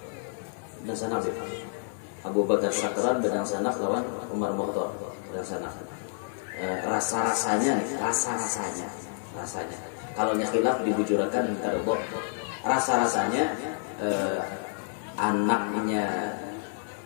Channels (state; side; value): silent; right; 59 dB below the other